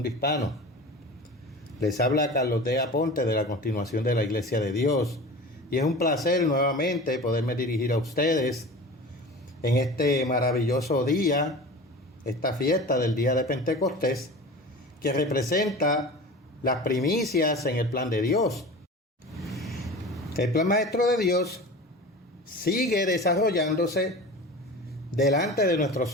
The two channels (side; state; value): both; normal; correlation 0.35